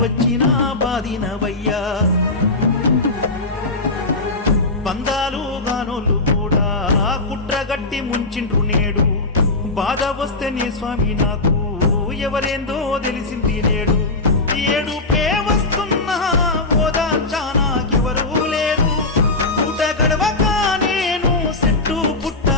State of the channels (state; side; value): quieter; right; 3.2 dB